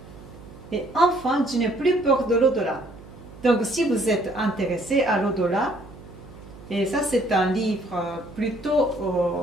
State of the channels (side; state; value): right; noise; hum, 19 dB below the sound